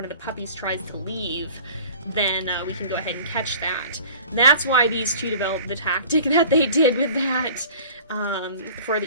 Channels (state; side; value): inverted; both; correlation -0.45